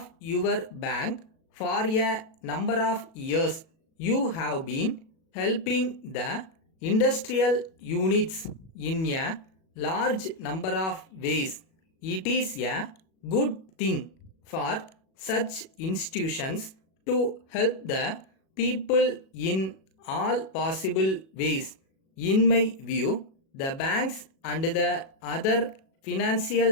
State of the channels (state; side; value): late; right; 37 ms